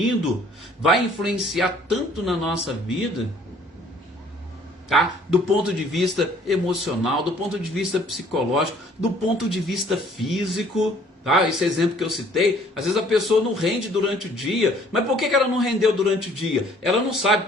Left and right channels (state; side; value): normal; both; correlation 0.58